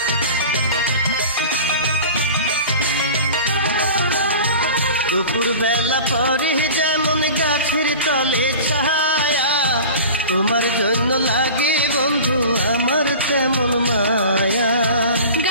দুপুর বেলা পরে যেমন গাছের তলে ছায়া, তোমার জন্য লাগে বন্ধু আমার তেমন মায়া।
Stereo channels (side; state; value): both; inverted; correlation -0.37